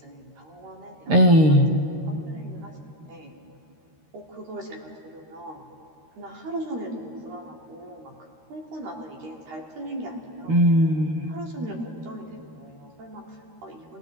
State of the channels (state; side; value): late; left; 13 ms